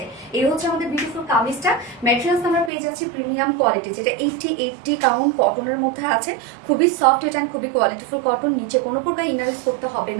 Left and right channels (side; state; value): left; drops out; at 2.7 s